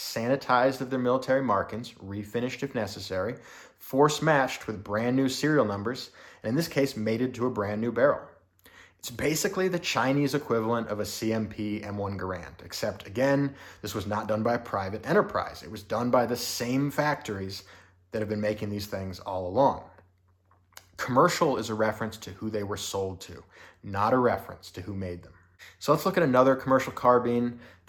of their military markings, refinished if necessary, force matched with brand new serial numbers, and in this case, mated to a brand new barrel. It's basically the Chinese equivalent of a CMP M1 Garand, except again, this was not done by a private enterprise. It was done by the same factories that have been making these things all along. Commercial is a reference to who they were sold to, not a reference to who made them. So let's look at another commercial carbine.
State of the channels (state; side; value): identical; both; correlation 1.00